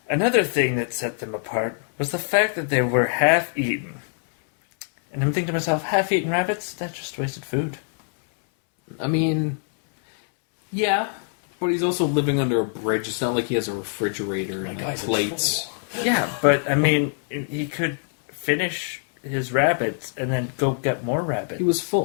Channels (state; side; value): silent; right; 63 dB below the other